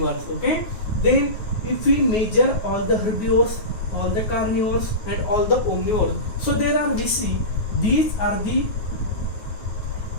okay, then if we measure all the herbivores, all the carnivores and all the omnivores, so there are, we see these are the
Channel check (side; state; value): right; late; 9.4 ms